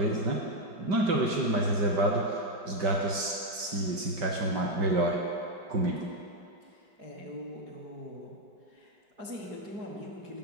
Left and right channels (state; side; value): late; left; 5.2 ms